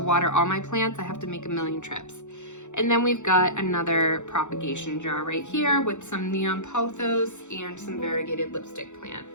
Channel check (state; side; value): late; right; 0.84 ms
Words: water all my plants, I have to make a million trips. And then we've got another propagation jar right here with some neon pothos and some variegated lipstick plant.